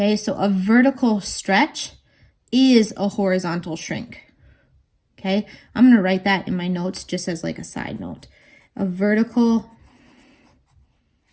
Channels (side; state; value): both; identical; correlation 1.00